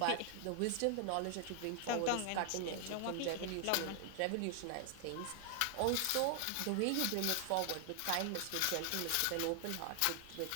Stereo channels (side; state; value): both; different; correlation 0.00